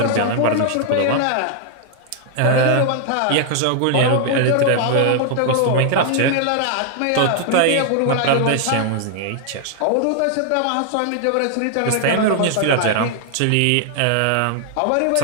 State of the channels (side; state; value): both; different; correlation 0.00